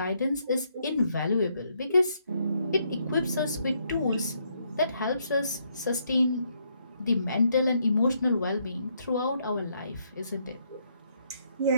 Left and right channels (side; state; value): both; inverted; correlation -0.73